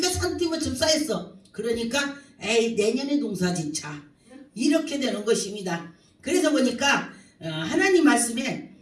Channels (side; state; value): both; identical; correlation 1.00